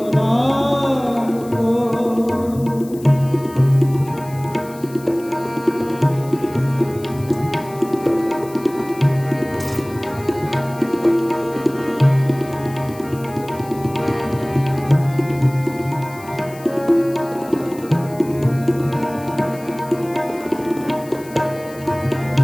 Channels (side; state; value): left; noise; hiss, 21 dB below the sound